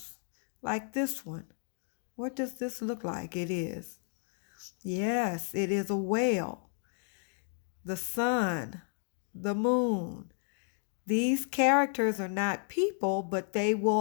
like this one. What does this look like? It is. Yes, it is a whale. The sun, the moon. These characters are not people, but they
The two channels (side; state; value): right; silent; 56 dB below the other